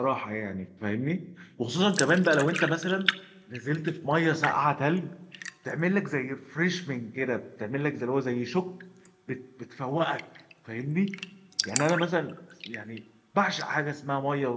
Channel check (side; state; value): both; identical; correlation 1.00